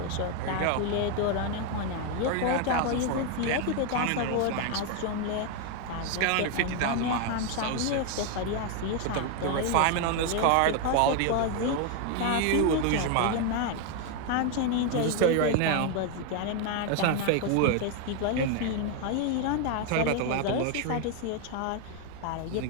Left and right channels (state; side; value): different; both; correlation 0.01